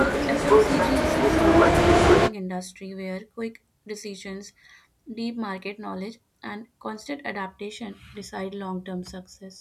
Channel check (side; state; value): both; identical; correlation 1.00